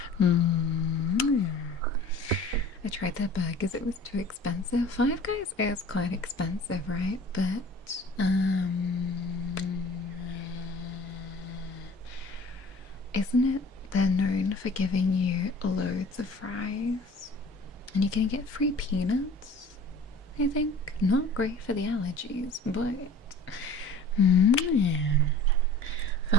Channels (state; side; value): normal; both; correlation 0.45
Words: I tried their burgers; it was too expensive. Five Guys is quite expensive, right? But isn't it? They're known for giving you loads of fries, and you're gonna get free peanuts. I think not great for the allergies, but